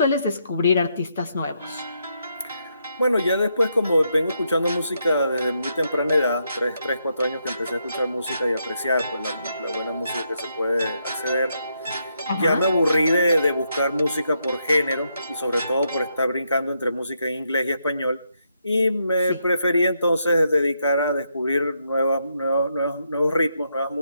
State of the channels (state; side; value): inverted; both; correlation -0.79